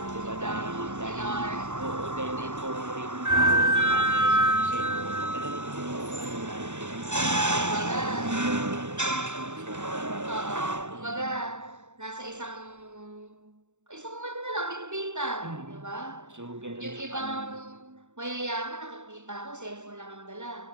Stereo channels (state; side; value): late; left; 0.84 ms